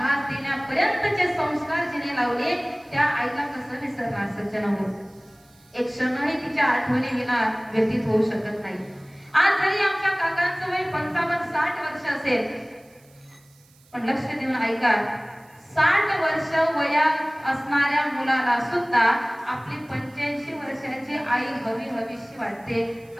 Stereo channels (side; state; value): right; noise; hiss, 30 dB below the sound